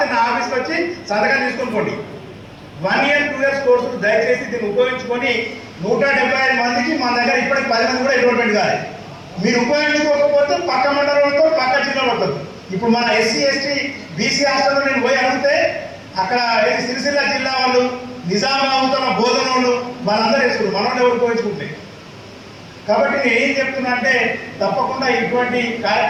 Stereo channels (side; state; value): both; identical; correlation 1.00